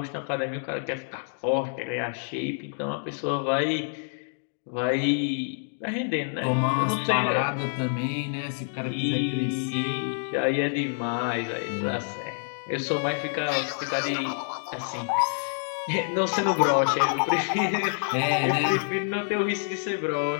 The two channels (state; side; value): silent; right; digital silence